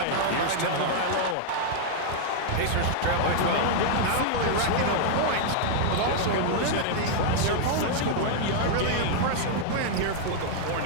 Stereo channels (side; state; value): both; different; correlation -0.01